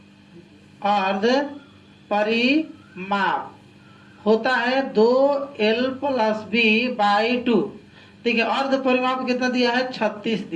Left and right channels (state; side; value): identical; both; correlation 1.00